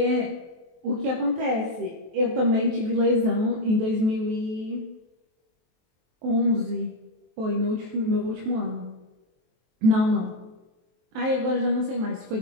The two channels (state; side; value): late; left; 23 ms